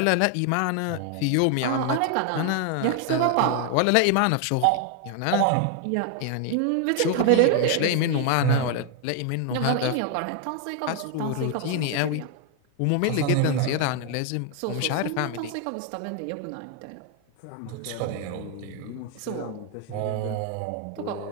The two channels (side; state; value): both; different; correlation 0.00